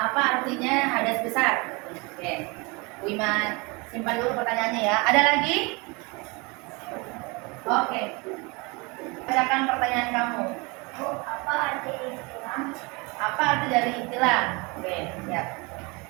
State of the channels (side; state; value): left; quieter; 27.6 dB